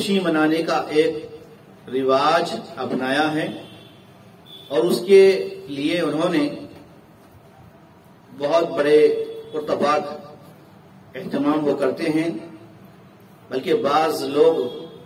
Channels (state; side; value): identical; both; correlation 1.00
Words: منانے کا ایک رواج اپنایا ہے، اور اس کے لیے انہوں نے بہت بڑے پرتپاک اہتمام وہ کرتے ہیں، بلکہ بعض لوگ